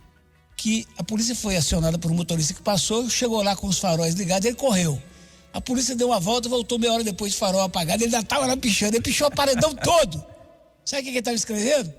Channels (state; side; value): identical; both; correlation 1.00